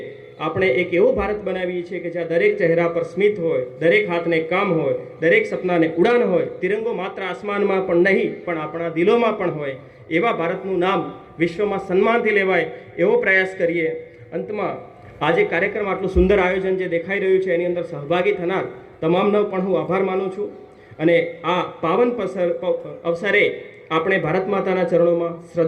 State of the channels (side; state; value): both; identical; correlation 1.00